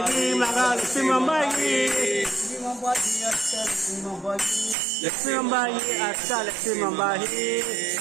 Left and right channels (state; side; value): drops out; left; at 4.8 s